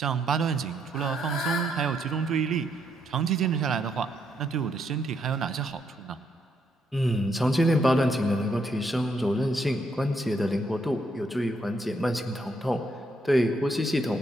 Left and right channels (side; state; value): both; normal; correlation 0.75